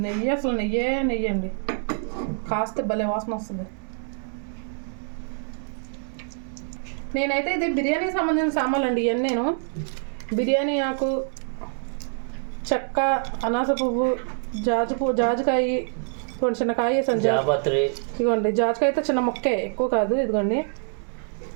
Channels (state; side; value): silent; left; 61 dB below the other